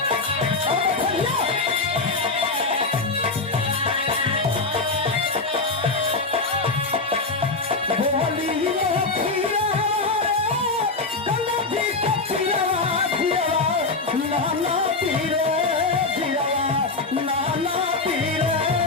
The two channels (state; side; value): quieter; right; 3.6 dB